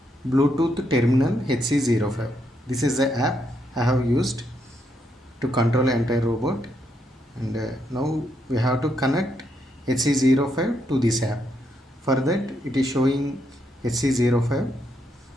Bluetooth terminal HC05. This is the app I have used to control entire robot. And now we have to connect HC05 to this app. For that it is showing HC05.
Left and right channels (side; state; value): both; normal; correlation 0.78